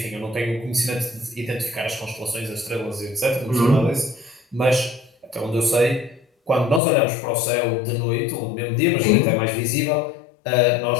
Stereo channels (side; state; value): right; drops out; at 6.8 s